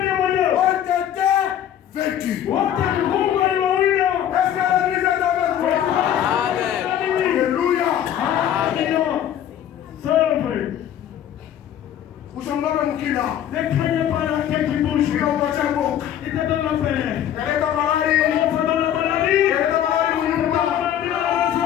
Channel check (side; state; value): right; quieter; 10.5 dB